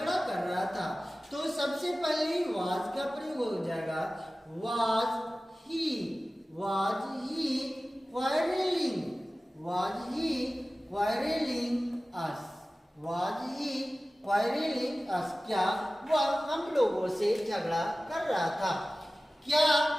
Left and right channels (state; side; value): normal; both; correlation 0.96